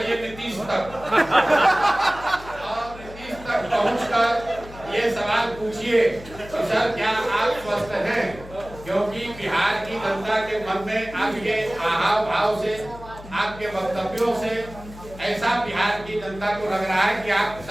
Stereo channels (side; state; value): left; noise; hum, 17 dB below the sound